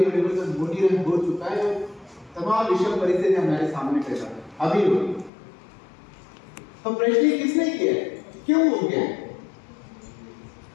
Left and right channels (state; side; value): drops out; right; at 5.3 s